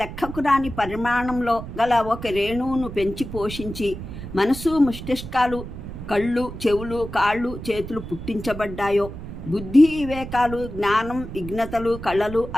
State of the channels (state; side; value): noise; right; rumble, 10 dB below the sound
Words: లెక్కకు రాని పరిమాణంలో గల ఒక రేణువును పెంచి పోషించి మనసు, మస్తిష్కాలు, కళ్ళు, చెవులు, కాళ్ళు, చేతులు పుట్టించబడ్డాయో, బుద్ధి, వివేకాలు, జ్ఞానం, విఘ్నతలు, కళలు,